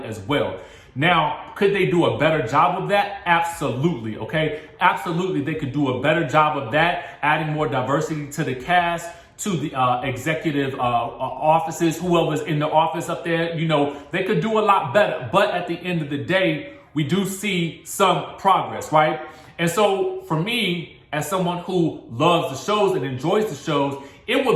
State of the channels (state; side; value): identical; both; correlation 1.00